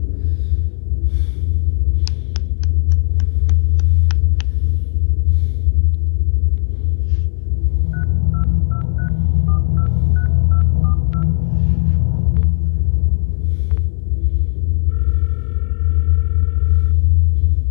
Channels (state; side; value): silent; right; digital silence